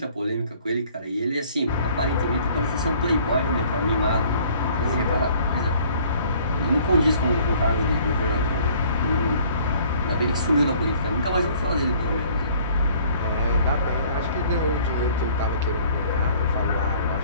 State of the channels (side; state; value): both; inverted; correlation -0.56